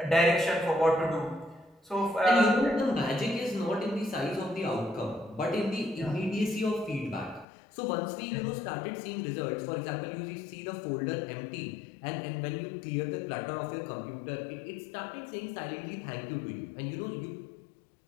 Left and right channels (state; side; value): drops out; right; at 7.5 s